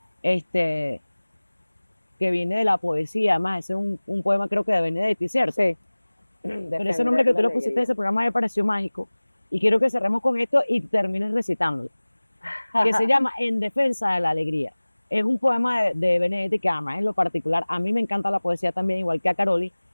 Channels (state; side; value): inverted; both; correlation -1.00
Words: que viene de la poesía, además, ese es un poema creo que de Benedetti, ¿cierto? Sí. Pero ese nombre que tú le pusiste a ese programa me pareció mágico. Y quiero que cerremos con esto y termines recitándolo. Que se llama En defensa de la alegría. Es un poema de Benedetti que además en lo particular, a mí me encanta la poesía también, igual que a Caroli,